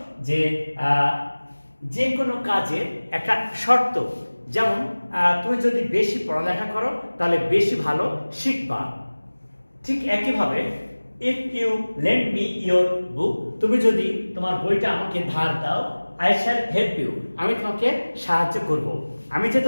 যে কোনো কাজের একটা শর্ত, যেমন তুমি যদি বেশি পড়ালেখা করো তাহলে বেশি ভালো শিখবা। ঠিক একইভাবে if you lend me your book, তুমি যদি তোমার বইটা আমাকে ধার দাও, I shall help you, আমি তোমাকে সাহায্য করব। আমি যে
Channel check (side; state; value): both; inverted; correlation -1.00